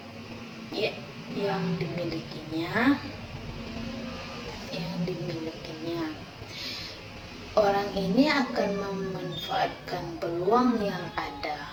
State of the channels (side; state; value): both; identical; correlation 1.00